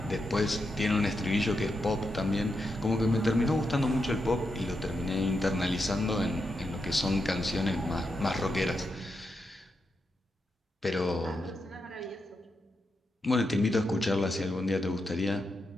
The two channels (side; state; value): both; normal; correlation 0.85